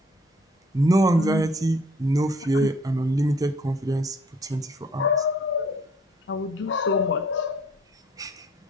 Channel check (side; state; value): both; normal; correlation 0.58